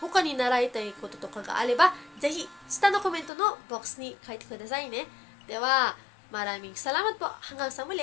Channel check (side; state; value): right; drops out; at 3.3 s